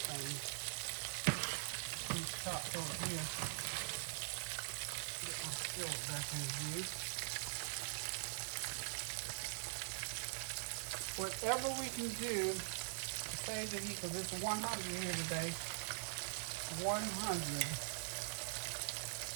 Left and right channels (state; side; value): silent; left; digital silence